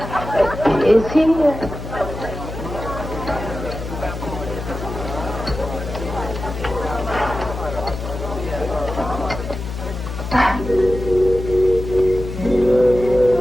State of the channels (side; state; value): left; noise; hum, 8 dB below the sound